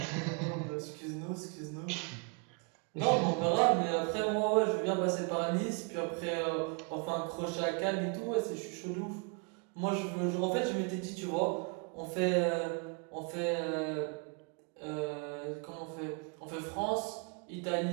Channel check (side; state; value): left; quieter; 36.8 dB